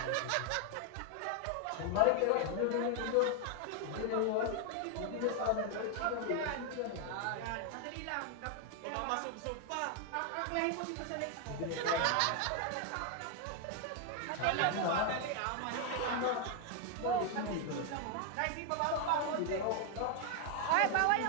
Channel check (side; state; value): both; different; correlation 0.00